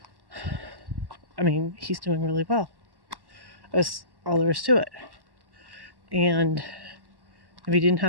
he's doing really well. That's all there is to it. And if he didn't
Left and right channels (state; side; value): late; left; 1.1 ms